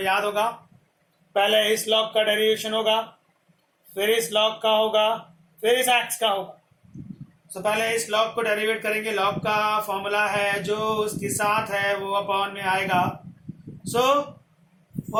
याद होगा, पहले इस log का डेरिवेशन होगा, फिर इस log का होगा, फिर इस x का होगा। सो पहले इस log को डेरिवेट करेंगे। log का फॉर्मूला है जो उसके साथ है वो अपॉन में आएगा। सो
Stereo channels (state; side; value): identical; both; correlation 1.00